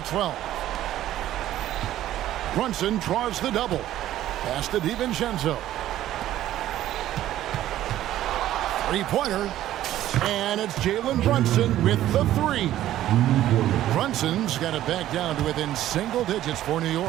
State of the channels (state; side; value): quieter; left; 13.2 dB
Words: 12. Brunson draws the double. Pass to DiVincenzo. Three-pointer. And it's Jalen Brunson with the three. Brunson's got it back down to within single digits for New